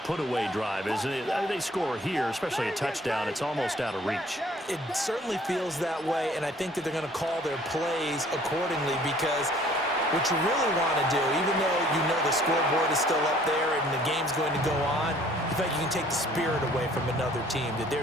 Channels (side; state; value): both; normal; correlation 0.56